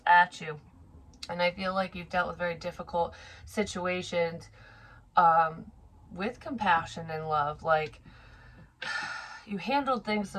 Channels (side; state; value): both; identical; correlation 1.00